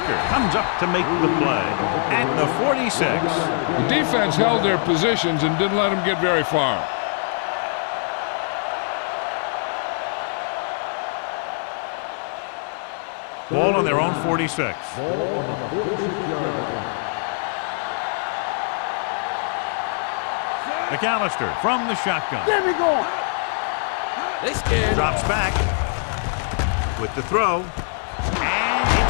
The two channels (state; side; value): silent; right; 59 dB below the other